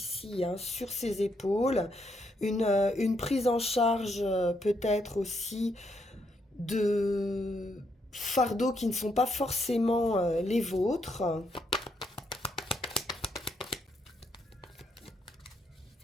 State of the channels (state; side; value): normal; both; correlation 0.76